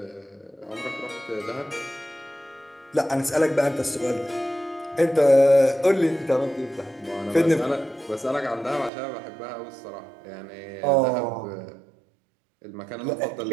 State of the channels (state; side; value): drops out; left; at 8.9 s